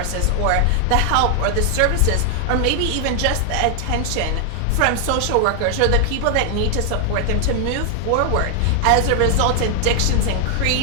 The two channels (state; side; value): different; both; correlation 0.00